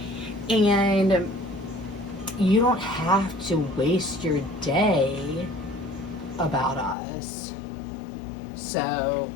And you don't have to waste your day about us. So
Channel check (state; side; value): drops out; right; at 7.0 s